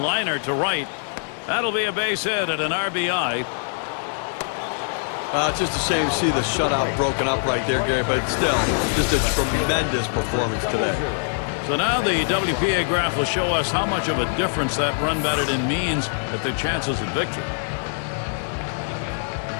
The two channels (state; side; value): silent; right; digital silence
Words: liner to right. That'll be a base hit at an RBI. It's just a shame to see the shutout broken up right there, Gary, but still, just a tremendous performance today. So now the WPA graph will show us how much of a difference that run batted in means at their chances at victory.